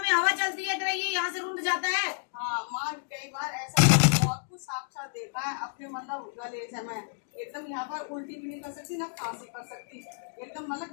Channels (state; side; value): silent; right; digital silence